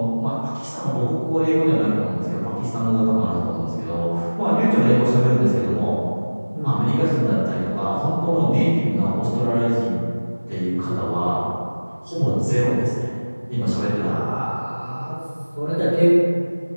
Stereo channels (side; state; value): both; inverted; correlation -1.00